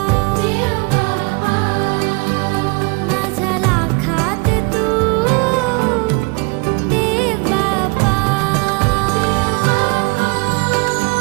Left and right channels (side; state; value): left; quieter; 29.6 dB